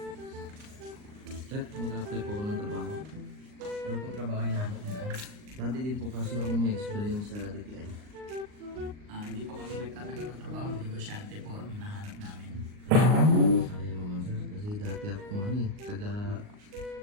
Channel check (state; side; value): late; left; 39 ms